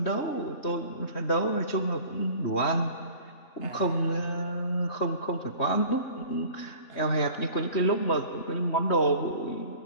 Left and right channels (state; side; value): late; right; 3.2 ms